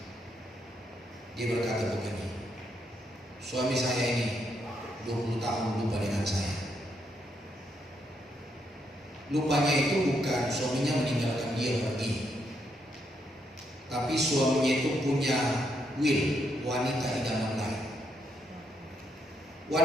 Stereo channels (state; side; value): normal; both; correlation 0.77